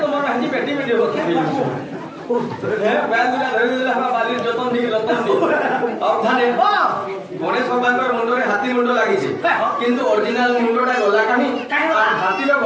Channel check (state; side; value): identical; both; correlation 1.00